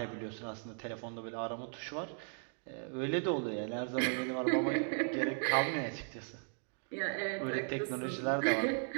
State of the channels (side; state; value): left; silent; 53 dB below the other